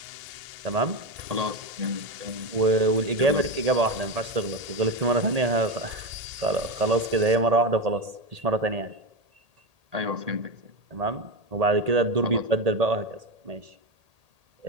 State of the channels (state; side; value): late; left; 1.8 ms